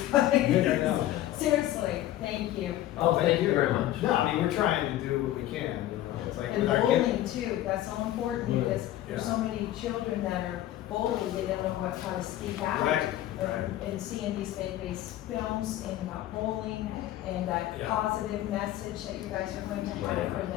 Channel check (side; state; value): right; quieter; 13.8 dB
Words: Yeah, I know. Seriously, thank you. Oh, thank you very much. No, I mean, we're trying to do what we can, you know, it's like And with our kids. bullying too, that's so important Mm, because there's yeah. so many children that are bullied, they don't know how to speak out. Right, And- right. And seeing these faith-based films and about bullying and that Yeah. positive message that you guys are going to have for